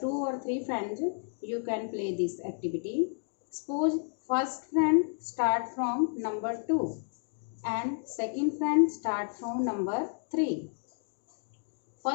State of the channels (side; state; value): right; silent; 57 dB below the other